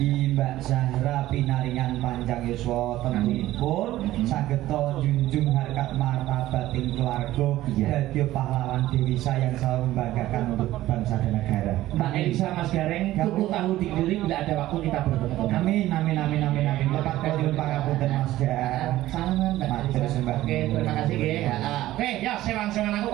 Mbak Zahra pinaringan panjang yuswa tentunipun saged junjung harkat martabating keluarga dadi pahlawan dewisa yang selalu membanggakan untuk bangsa dan negara. Mbak Elisa, Mas Gareng, tuku tahu dikiri bila ada waktu kita bertemu. Amin. Lepas kajun pangapunten Mas Gar. Salaman Mbak Matur Elisa. sembah. Oke, terima kasih nggih. Oke, ya sewan-sewan aku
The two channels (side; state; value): left; quieter; 15.3 dB